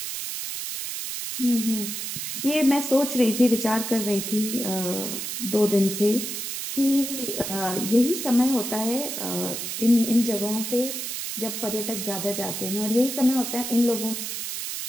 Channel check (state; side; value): noise; right; hiss, 5 dB below the sound